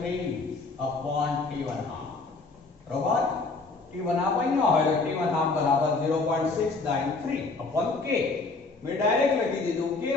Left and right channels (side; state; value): right; quieter; 3.7 dB